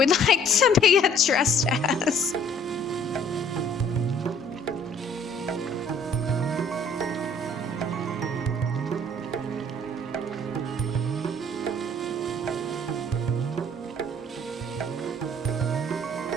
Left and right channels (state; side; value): normal; both; correlation 0.57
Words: like to be addressed as.